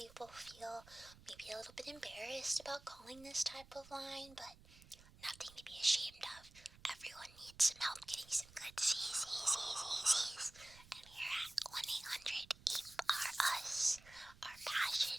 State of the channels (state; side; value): noise; right; rumble, 22 dB below the sound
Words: feel maybe a little bit embarrassed about calling this type of line, but nothing to be ashamed of. Everyone needs some help getting some good Z's. And here at 1-800-EEP-R-US, our passion